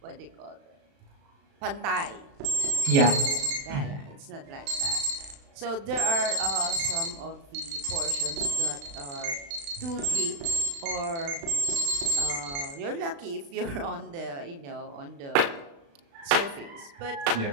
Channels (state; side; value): late; left; 36 ms